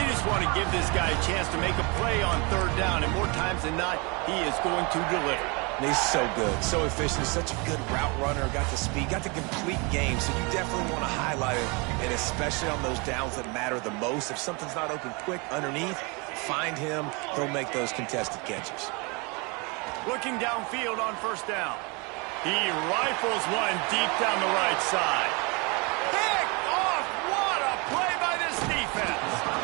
just want to give this guy a chance to make a play on third down, and more times than not, he is going to deliver. He's so good, so efficient, such a good route runner, got the speed, got the complete game, so you definitely want to highlight it, and especially on those downs that matter the most. If something's not open quick underneath, find him, he'll make those contested catches. Looking downfield on first down. He rifles one deep down the right side. Picked off! What a play by this defense!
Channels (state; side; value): quieter; left; 29.8 dB